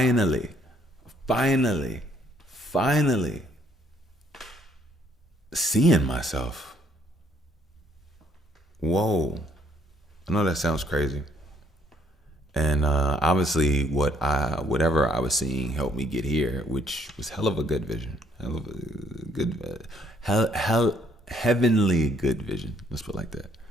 seeing myself. Whoa. I know that sounds crazy. And obviously whatever I was seeing helped me get here, which was hell of a good vision. Hell of a good, heavenly good vision. Let's put it like that.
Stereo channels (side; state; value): both; normal; correlation 0.66